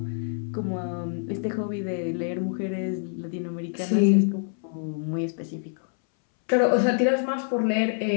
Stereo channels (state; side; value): silent; right; 61 dB below the other